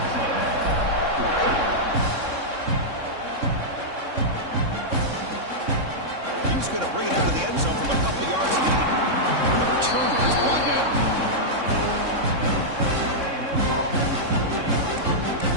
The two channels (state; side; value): late; left; 3.6 ms